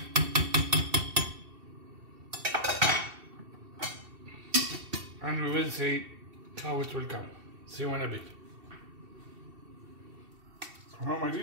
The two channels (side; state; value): left; late; 2.7 ms